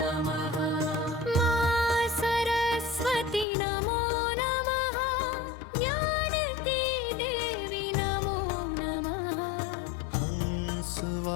नमः। मां सरस्वती नमो नमः। ज्ञान की देवी नमो नमः।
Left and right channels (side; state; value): right; drops out; at 3.5 s